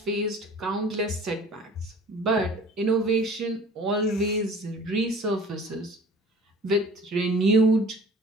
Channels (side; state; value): both; normal; correlation 0.47